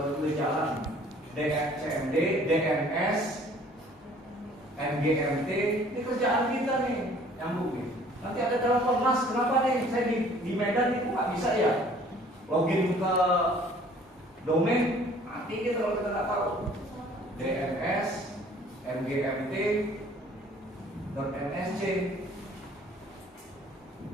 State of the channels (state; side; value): normal; both; correlation 0.54